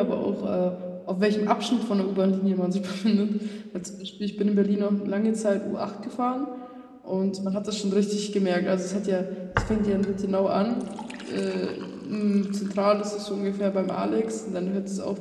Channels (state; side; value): identical; both; correlation 1.00